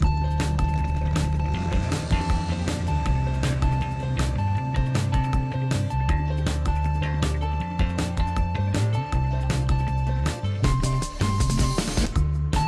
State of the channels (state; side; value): identical; both; correlation 1.00